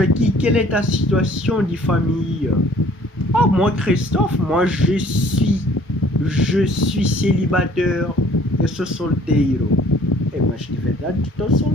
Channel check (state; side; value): normal; both; correlation 0.55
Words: quelle est ta situation de famille? Ah, moi Christophe, moi je suis célibataire, eu sou solteiro. Mas de verdade estou